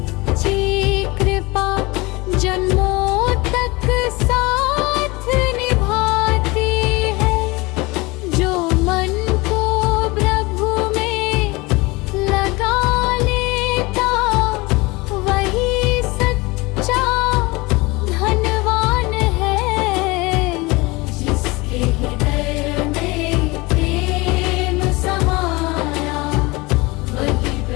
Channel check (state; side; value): quieter; right; 23.6 dB